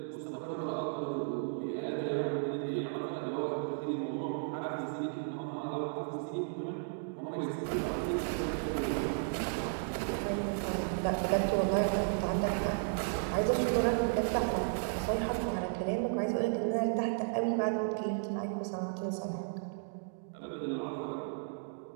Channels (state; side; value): silent; left; digital silence